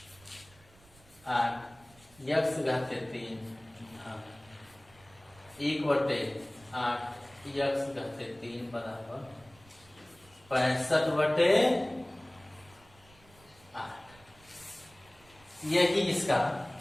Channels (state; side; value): noise; right; rumble, 27 dB below the sound